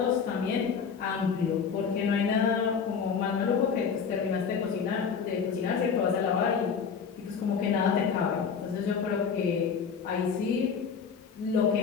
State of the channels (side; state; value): right; quieter; 6.3 dB